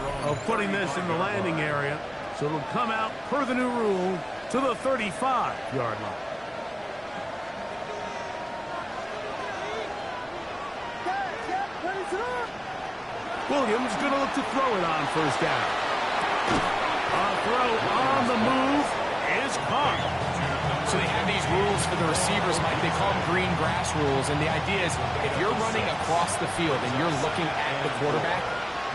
of putting this in the landing area, so it'll come out per the new rule to the 35-yard line. Williams going to look to throw it on first down. A throw on the move is caught. So they have these rules for the receivers, Mike. They call them green grass rules, and the idea is if you're running across the field and you're looking at the quarterback,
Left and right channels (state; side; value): identical; both; correlation 1.00